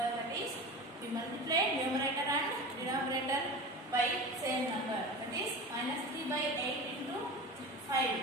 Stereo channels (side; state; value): both; normal; correlation 0.32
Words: That is we multiply numerator and denominator by same number. That is minus 3/8 into 5.